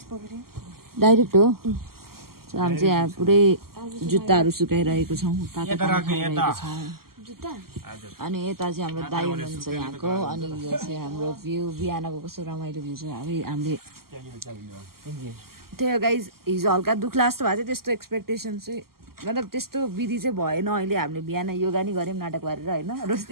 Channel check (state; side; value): late; left; 0.93 ms